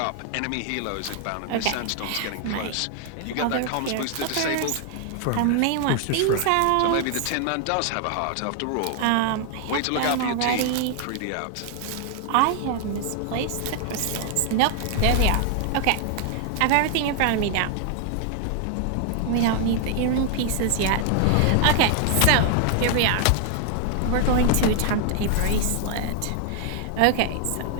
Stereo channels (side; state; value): both; different; correlation 0.00